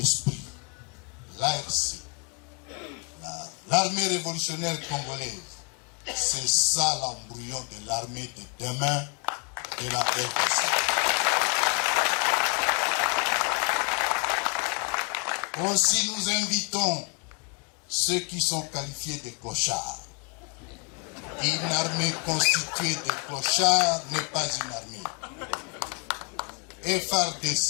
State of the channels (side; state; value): right; quieter; 35.4 dB